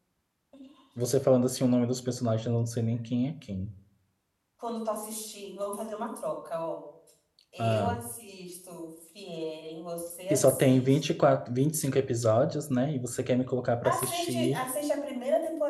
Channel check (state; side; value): identical; both; correlation 1.00